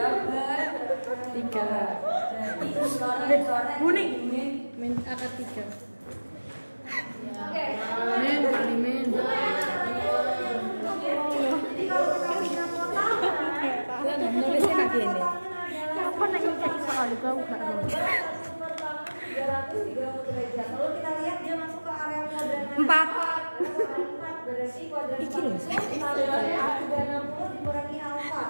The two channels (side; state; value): both; inverted; correlation -1.00